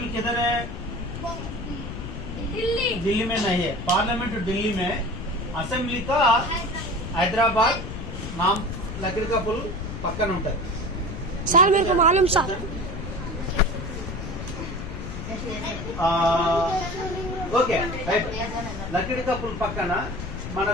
किधर है? दिल्ली में नहीं है. पार्लियामेंट दिल्ली में, असेंबली का हैदराबाद नाम लकड़ी का पुल पक्कन ఉంటుంది. सर मेरे को मालूम सर. Okay right. లకడి కప్పుల పక్కన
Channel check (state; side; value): noise; left; rumble, 7 dB below the sound